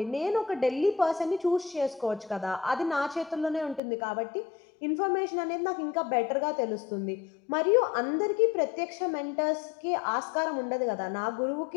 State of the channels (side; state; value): right; drops out; at 3.8 s